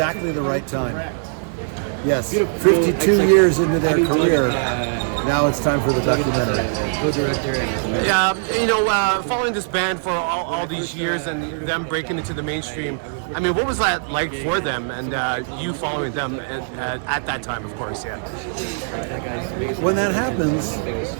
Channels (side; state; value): left; silent; digital silence